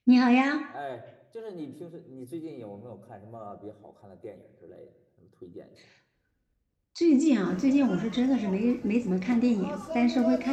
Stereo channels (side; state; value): both; identical; correlation 1.00